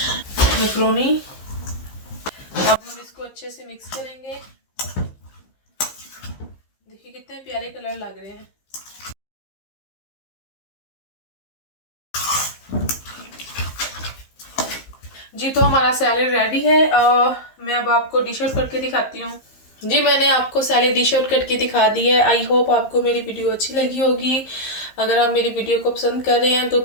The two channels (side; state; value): right; late; 15 ms